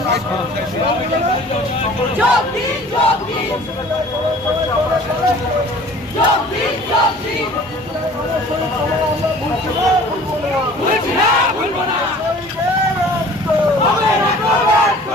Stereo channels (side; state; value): both; normal; correlation 0.48